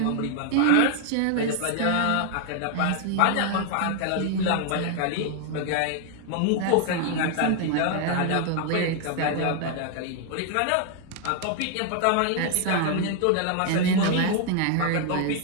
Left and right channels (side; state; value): both; different; correlation 0.00